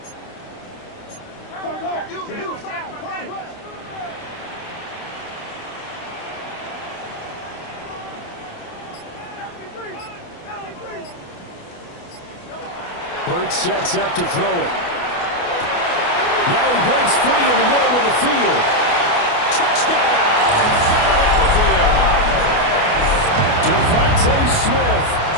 Hurts sets up to throw it. Now he breaks free in the middle of the field. Touchdown, Philadelphia. Devontae Smith,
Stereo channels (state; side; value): late; right; 29 ms